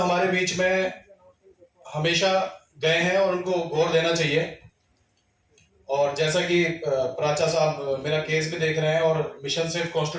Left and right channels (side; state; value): both; identical; correlation 1.00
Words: बीच में हमेशा गए हैं और उनको गौर देना चाहिए। और जैसा कि प्राचा साहब मेरा केस भी देख रहे हैं और मिशन सेफ